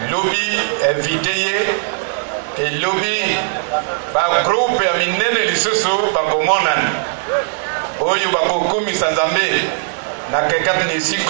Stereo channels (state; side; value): silent; left; 61 dB below the other